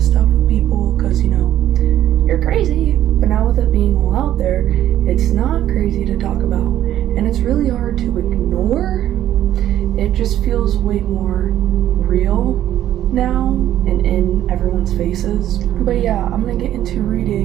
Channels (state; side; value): quieter; left; 12.1 dB